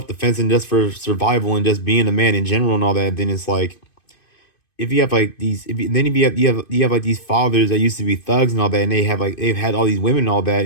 and just for survival and just being a man in general and all that, then it's like if you have like these if you have like these fathers that used to be thugs and all that and they've had all these women and all that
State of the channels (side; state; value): right; late; 2.5 ms